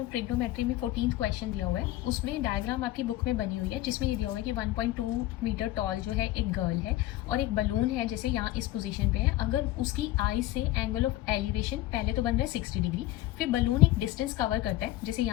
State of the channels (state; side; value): quieter; right; 15.8 dB